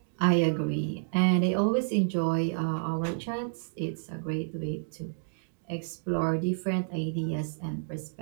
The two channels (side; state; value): left; silent; digital silence